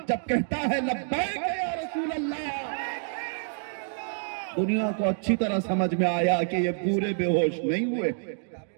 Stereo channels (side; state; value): left; silent; digital silence